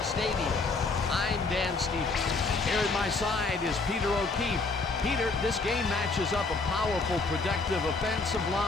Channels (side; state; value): right; quieter; 3.8 dB